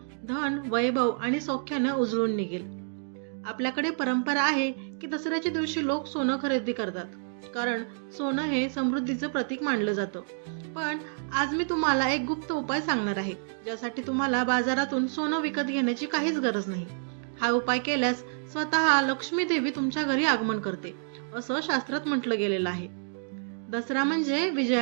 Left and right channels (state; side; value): silent; left; digital silence